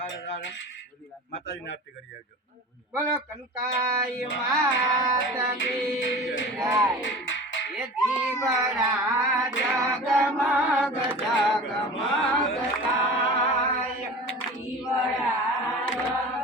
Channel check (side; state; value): both; normal; correlation 0.36